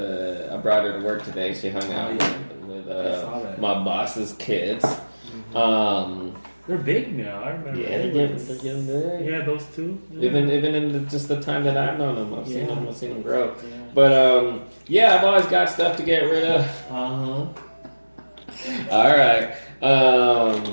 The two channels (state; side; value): inverted; both; correlation -1.00